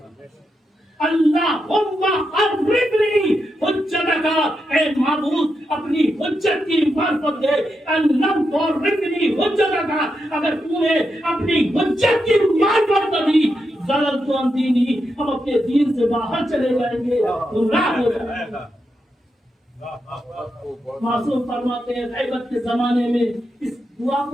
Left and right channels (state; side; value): normal; both; correlation 0.85